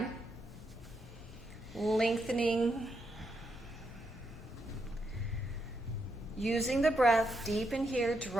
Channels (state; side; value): normal; both; correlation 0.81